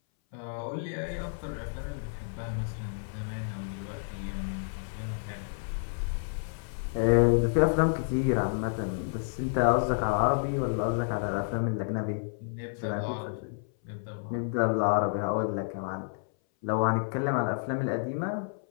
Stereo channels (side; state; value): right; silent; 58 dB below the other